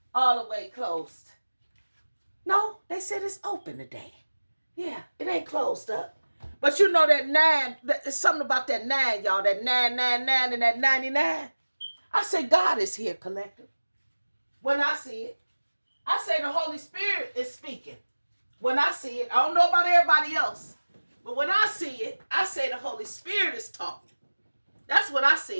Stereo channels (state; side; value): inverted; both; correlation -1.00